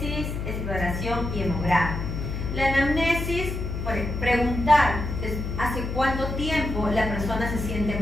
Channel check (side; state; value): left; noise; hum, 4 dB below the sound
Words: exploración y hemograma. La anamnesis, preguntar hace cuánto tiempo la persona se siente